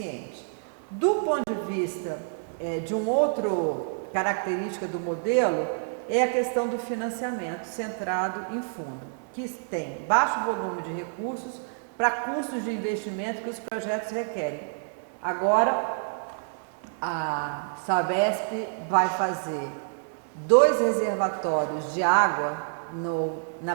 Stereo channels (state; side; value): silent; left; digital silence